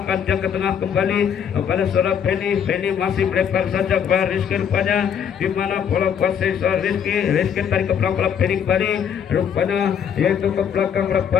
dia ke tengah kembali pada saudara Benny masih melebar saja kepada Rizky rupanya di mana bola kuasai Rizky tarik ke belakang bola Benny kembali rupanya yaitu ke belakang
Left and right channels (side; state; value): right; quieter; 8.1 dB